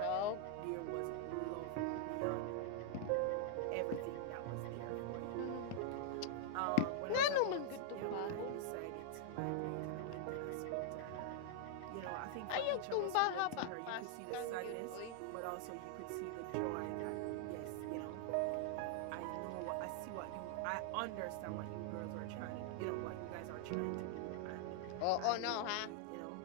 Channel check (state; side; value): different; both; correlation 0.00